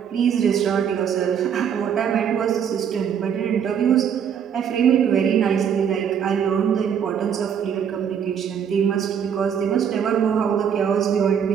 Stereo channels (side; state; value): left; quieter; 8.0 dB